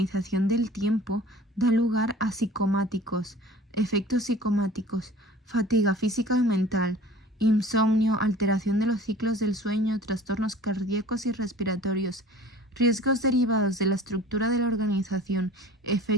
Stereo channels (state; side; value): normal; both; correlation 0.45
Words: del tiempo da lugar a psicomáticos, efectos psicomáticos, fatiga física y mental, insomnio, alteración de los ciclos del sueño, trastornos cardíacos y respiratorios. Riesgos derivados de la estructura de la organización,